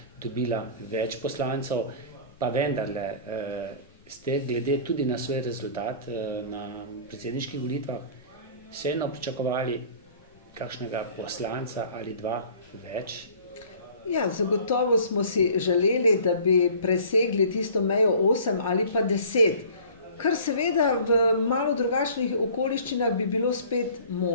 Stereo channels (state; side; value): inverted; both; correlation -0.46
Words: dobila več poslancev, pa vendarle ste glede tudi na svoj rezultat na predsedniških volitvah vseeno pričakovali kakšnega poslanca ali dva več? Ja, zagotovo smo si želeli, da bi presegli tisto mejo 8 ali pa 10, kar seveda v malo drugačnih okoliščinah bi bilo spet